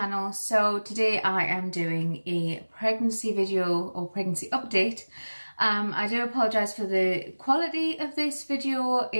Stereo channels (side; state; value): both; inverted; correlation -1.00